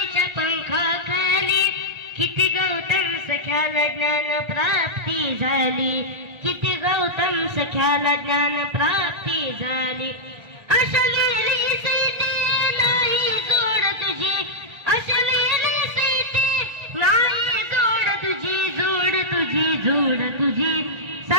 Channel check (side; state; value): left; late; 1.3 ms